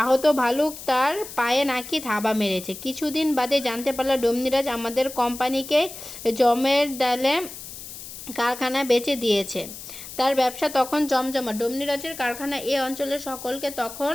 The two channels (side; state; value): left; noise; hiss, 12 dB below the sound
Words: আহত ভালুক তার পায়ে নাকি থাবা মেরেছে। কিছুদিন বাদে জানতে পারলাম ডমনিরাজ আমাদের কোম্পানিকে জমের ডালে কারখানা বেচে দিয়েছে। তার ব্যবসা তখন জমজমা। ডমনিরাজের কারখানা এ অঞ্চলের সকলকে তখন